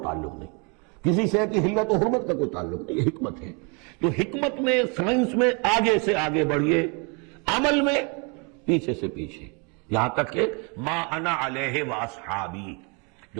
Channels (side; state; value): left; quieter; 33.5 dB